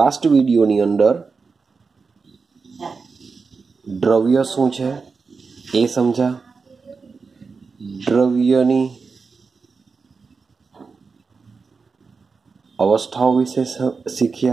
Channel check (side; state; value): left; quieter; 4.8 dB